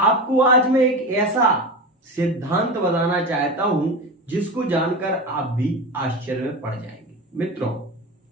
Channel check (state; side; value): normal; both; correlation 0.25